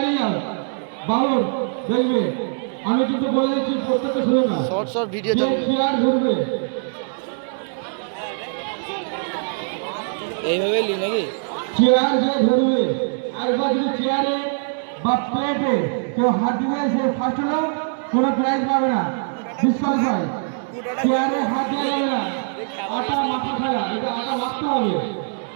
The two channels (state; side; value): silent; left; digital silence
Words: যাও বাবুর দেখবে আমি কিন্তু বলে দিচ্ছি প্রত্যেকটা শুনে না শর্ট শর্ট ভিডিও যে চলবে চেয়ার ধরবে এইভাবে লি নাকি চেয়ার যে ধরবে একবার যদি চেয়ারে বা প্লেটে কেউ হাত দিবে সে ফার্স্ট হলো কোনো প্রাইজ পাবে না ডিসকাউন্ট চেয়ারে হাত দেওয়া যাবে না আটা মাথা খেলা এটা আটা মাখতে হবে